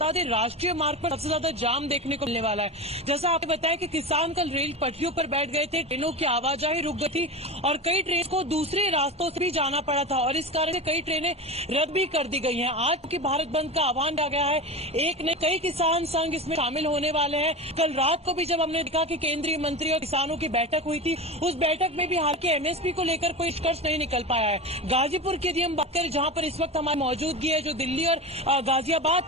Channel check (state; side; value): normal; both; correlation 0.24